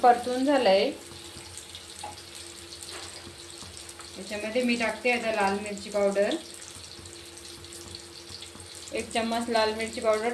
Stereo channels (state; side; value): identical; both; correlation 1.00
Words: झालंय। याच्यामध्ये मी टाकते आता लाल मिरची पावडर। 1 चम्मच लाल मिरची पावडर